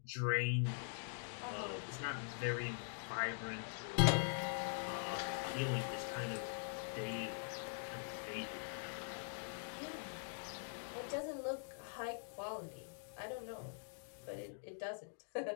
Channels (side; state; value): right; silent; digital silence